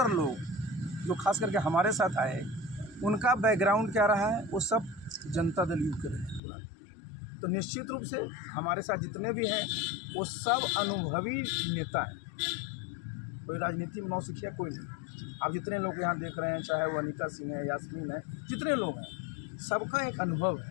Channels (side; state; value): right; drops out; at 6.4 s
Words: लोग जो खास करके हमारे साथ आए उनका बैकग्राउंड क्या रहा है, वो सब जनता दल यू के रहे। तो निश्चित रूप से हमारे साथ जितने भी हैं वो सब अनुभवी नेता हैं, कोई राजनीति में नौसिखिया कोई नहीं। आप जितने लोग यहाँ देख रहे हैं, चाहे वो अनीता सिंह है, यास्मीन है, जितने लोग हैं सबका एक अनुभव